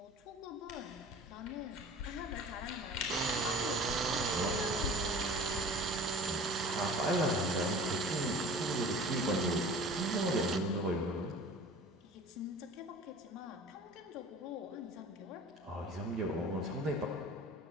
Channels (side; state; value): both; normal; correlation 0.43